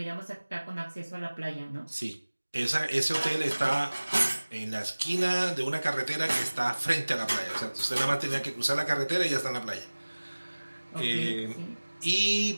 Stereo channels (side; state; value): both; inverted; correlation -1.00